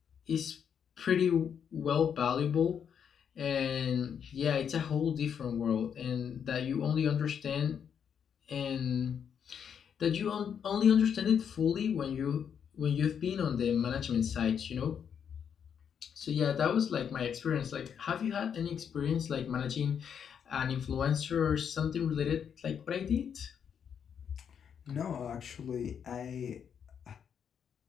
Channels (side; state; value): right; quieter; 7.8 dB